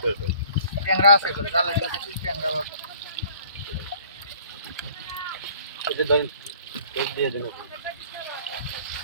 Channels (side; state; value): both; inverted; correlation -0.54